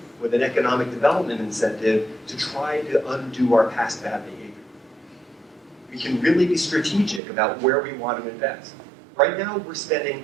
with an economic development incentive to try to undo our past bad behavior. We can really be strategic about where we want to invest. Right now, we're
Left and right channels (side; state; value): left; drops out; at 7.2 s